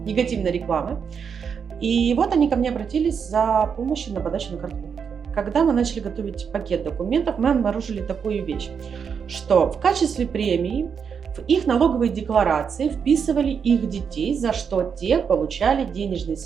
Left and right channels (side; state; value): left; quieter; 6.7 dB